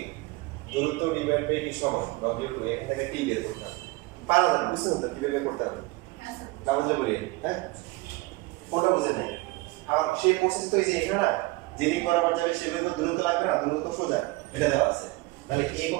দূরত্ব ডিভাইড বাই কি সময় W2, এখান থেকে T বের করতে হবে, পারা যাবে বুঝছেন তো কিভাবে বের করতে হবে, হ্যাঁ স্যার না বুঝলে বলি হ্যাঁ কোনটা বুঝেন নাই, আবার সেই প্রসেস তো এই যে এখানে না যেদিক বরাবর যাবে সেভাবে তো দূরত্ব লাগবে না, দূরত্ব সোজা এটা দেওয়া আছে, তাহলে A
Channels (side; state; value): left; quieter; 22.1 dB